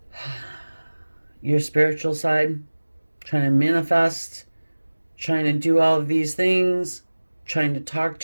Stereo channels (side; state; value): both; inverted; correlation -1.00